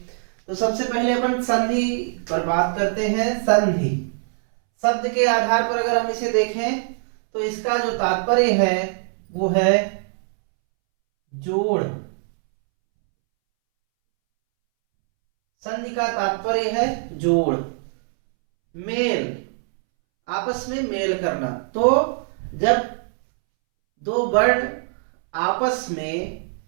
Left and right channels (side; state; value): left; silent; 64 dB below the other